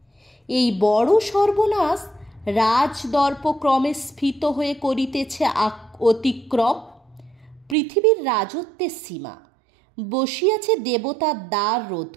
এই বড় সর্বনাশ রাজদর্প ক্রমে স্ফীত হয়ে করিতেছে অতিক্রম। পৃথিবীর রাজত্বের সীমা বসিয়াছে দেবতার দ্বার রোধ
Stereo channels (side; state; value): left; drops out; at 7.8 s